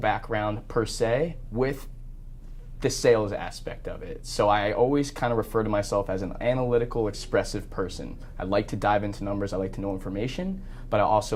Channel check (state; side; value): identical; both; correlation 1.00